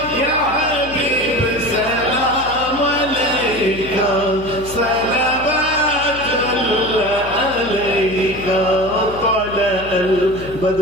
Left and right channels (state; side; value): noise; left; hum, 15 dB below the sound